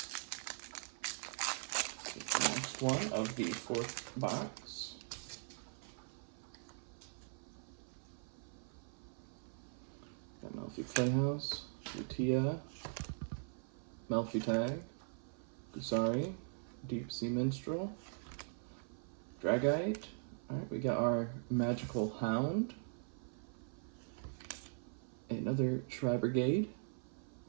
The next one of the fourth box. Got Melfi Playhouse, Lutia, Melfi Tag, Gusari, Deep Sea Minstrel, Dragite. Alright, we got our Magical Hound, another Tri-Brigade,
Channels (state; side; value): silent; left; 50 dB below the other